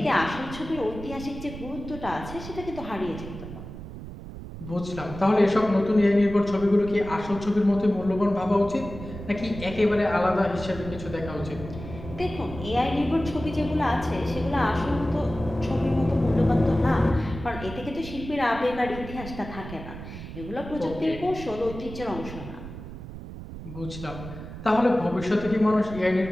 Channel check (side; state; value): right; noise; rumble, 11 dB below the sound